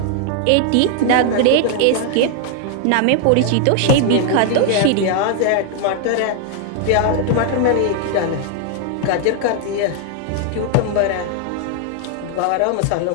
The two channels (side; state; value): both; different; correlation 0.00